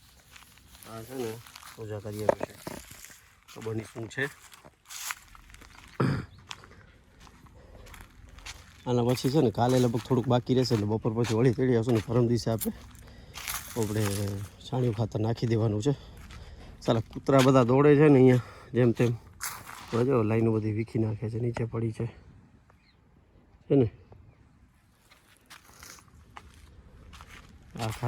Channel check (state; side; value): identical; both; correlation 1.00